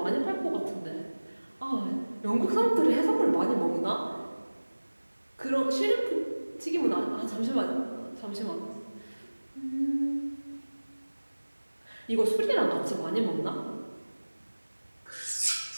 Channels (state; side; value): inverted; both; correlation -1.00